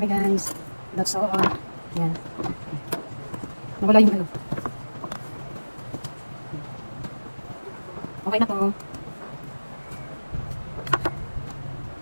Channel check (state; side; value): inverted; both; correlation -1.00